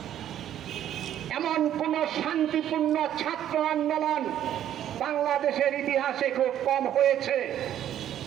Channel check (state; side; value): quieter; left; 11.0 dB